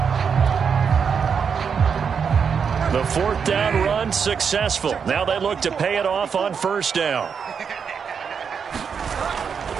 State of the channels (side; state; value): left; quieter; 6.5 dB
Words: The 4th down run successful. Now they look to pay it off on first down.